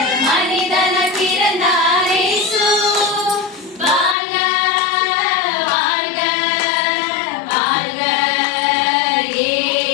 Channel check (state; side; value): drops out; right; at 4.2 s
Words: மனிதன பிறந்தார் இயேசு. வாழ்க வாழ்க வாழ்க